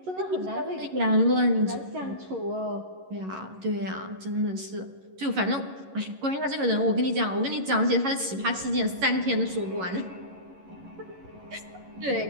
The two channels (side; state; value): left; late; 11 ms